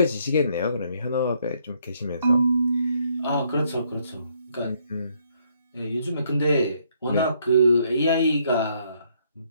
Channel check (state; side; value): inverted; both; correlation -0.69